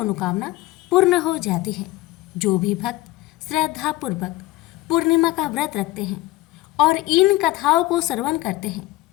पूर्ण हो जाती है। जो भी भक्त श्रद्धापूर्वक पूर्णिमा का व्रत रखते हैं और इन कथाओं को श्रवण करते हैं,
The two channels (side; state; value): right; quieter; 18.5 dB